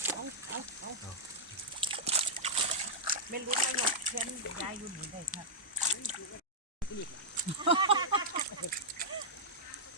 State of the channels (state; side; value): normal; both; correlation -0.08